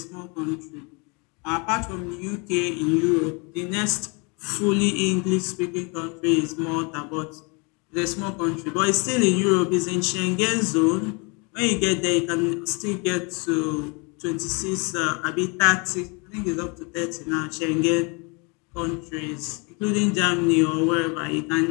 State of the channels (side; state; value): right; quieter; 31.6 dB